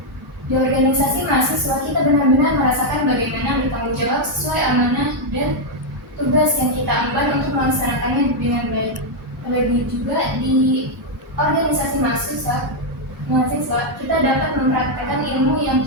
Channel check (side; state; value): both; normal; correlation 0.00